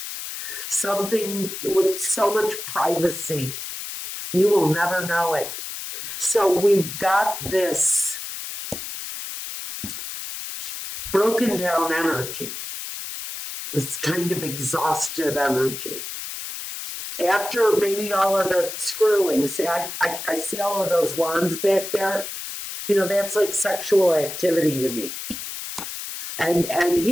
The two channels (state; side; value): noise; left; hiss, 8 dB below the sound